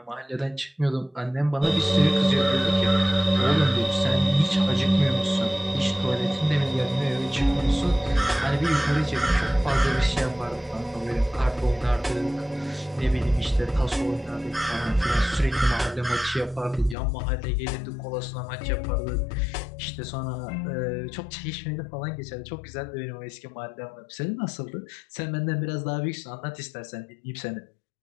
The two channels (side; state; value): right; drops out; at 16.9 s